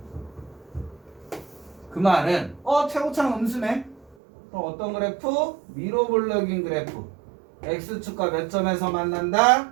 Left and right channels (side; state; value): left; drops out; at 4.2 s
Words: 그 말은 최고차는 음수네. 그럼 어떤 그래프? 위로 볼록인 그래프. X축과 몇 점에서 만난다?